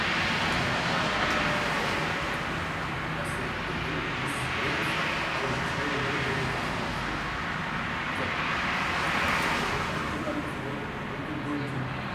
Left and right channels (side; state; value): both; identical; correlation 1.00